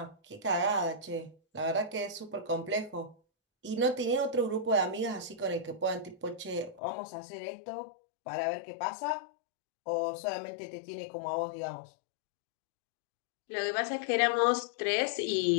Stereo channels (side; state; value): right; drops out; at 6.8 s